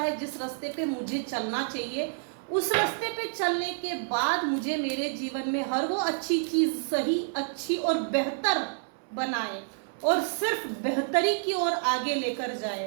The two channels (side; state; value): left; silent; 59 dB below the other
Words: जिस रास्ते पे मुझे चलना चाहिए, उस रास्ते पे चलने के बाद मुझे मेरे जीवन में हर वो अच्छी चीज सही, अच्छी और बेहतर बनाए और सिर्फ बेहतरी की ओर आगे लेकर